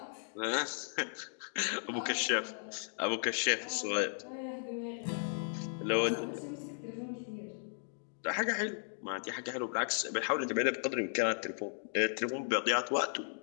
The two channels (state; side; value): silent; right; digital silence